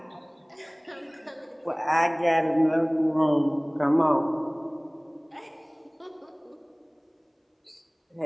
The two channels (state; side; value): identical; both; correlation 1.00